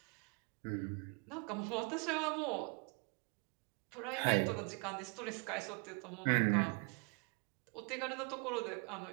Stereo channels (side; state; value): left; quieter; 33.7 dB